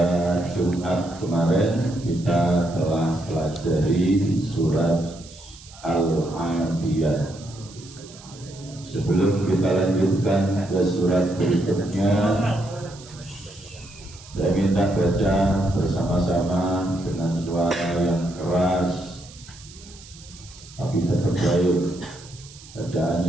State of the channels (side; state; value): right; noise; hiss, 20 dB below the sound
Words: Jumat kemarin kita telah pelajari surat Al-Adiyat. Sebelum kita lanjutkan ke surat berikutnya, saya minta baca bersama-sama dengan suara yang keras tapi tetap baik,